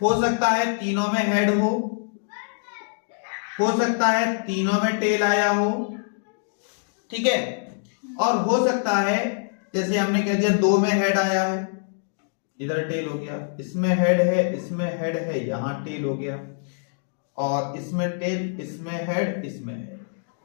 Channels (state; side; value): silent; right; digital silence